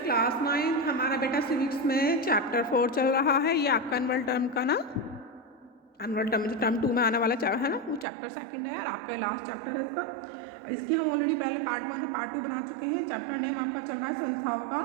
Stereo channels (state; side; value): drops out; left; at 8.1 s